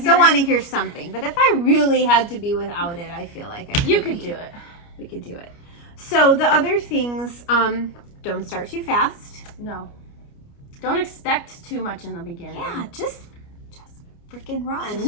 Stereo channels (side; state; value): right; late; 29 ms